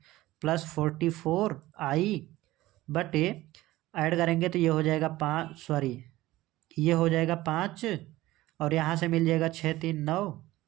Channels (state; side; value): quieter; left; 17.2 dB